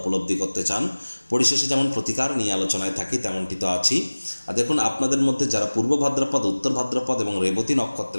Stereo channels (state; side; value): inverted; both; correlation -1.00